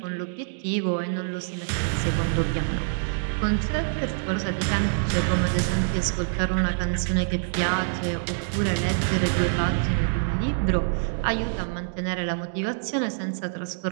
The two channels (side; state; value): left; silent; digital silence